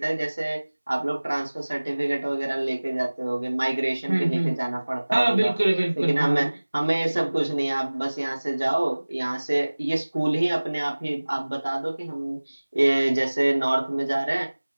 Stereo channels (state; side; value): inverted; both; correlation -1.00